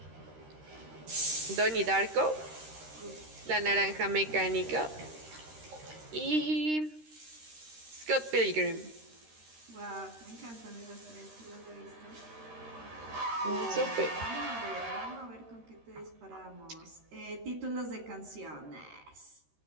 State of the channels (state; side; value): late; left; 13 ms